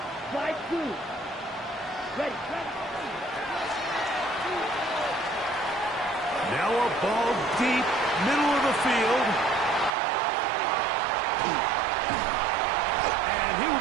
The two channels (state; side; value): drops out; left; at 9.9 s